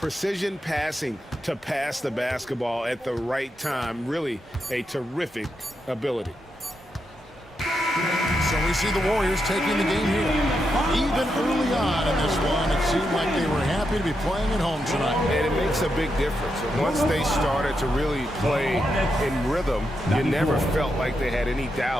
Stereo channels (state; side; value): normal; both; correlation 0.84